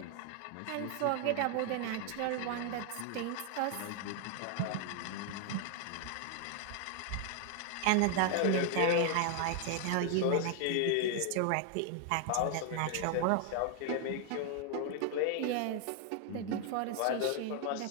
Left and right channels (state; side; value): different; both; correlation 0.00